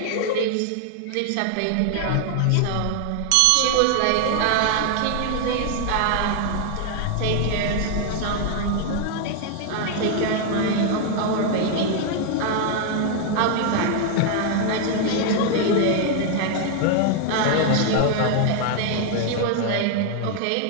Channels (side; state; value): both; different; correlation 0.00